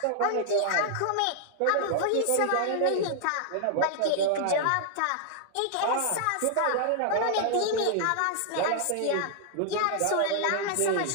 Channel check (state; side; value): different; both; correlation -0.01